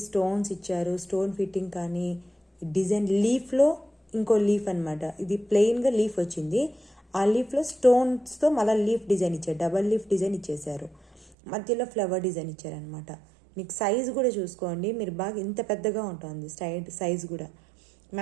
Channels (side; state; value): left; drops out; at 11.4 s